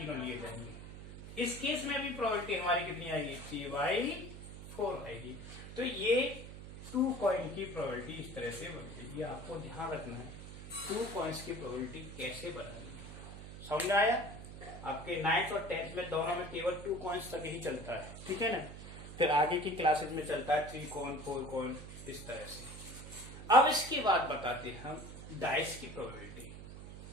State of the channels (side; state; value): right; noise; hum, 12 dB below the sound